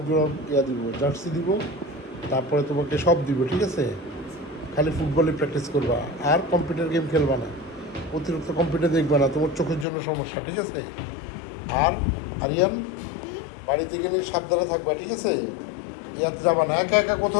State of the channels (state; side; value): drops out; right; at 9.9 s